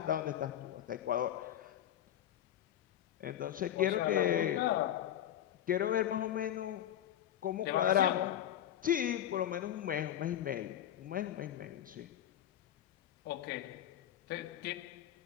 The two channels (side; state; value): right; quieter; 11.2 dB